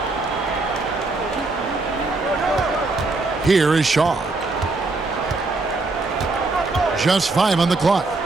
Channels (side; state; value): left; quieter; 3.4 dB